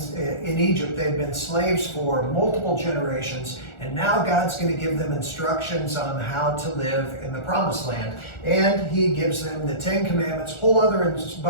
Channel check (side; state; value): right; late; 1.4 ms